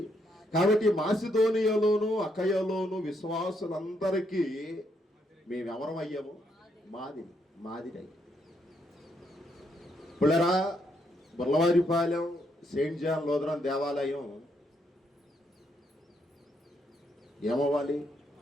కాబట్టి మాసిదోనియాలోను అకయలోను విశ్వాసులందరికీ మేమెవరమయ్యాము? మాదిరి. పుల్లరా, బుర్లవారిపాలెం సెయింట్ జాన్ లూథరన్ దేవాలయం ఏమవ్వాలి?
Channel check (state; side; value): normal; both; correlation 0.75